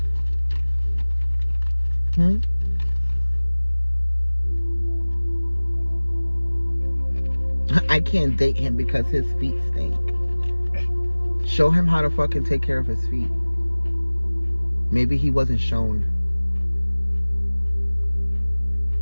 I can't date him because his feet stink. Show him how to fucking take care of his feet. Maybe he wasn't shown.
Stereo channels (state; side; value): inverted; both; correlation -1.00